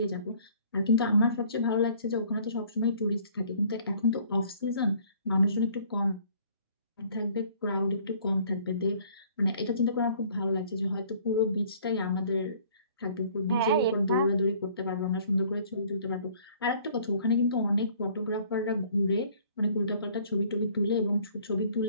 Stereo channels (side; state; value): both; inverted; correlation -0.56